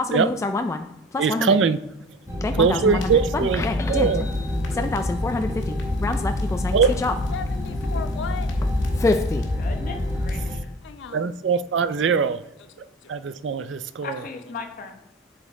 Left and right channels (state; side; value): normal; both; correlation 0.38